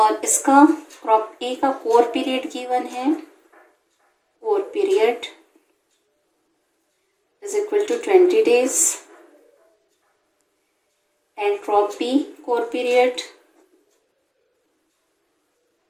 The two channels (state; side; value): identical; both; correlation 1.00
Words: इसका क्रॉप ए का कोर पीरियड गिवन है, core period is equal to 20 days and crop B core period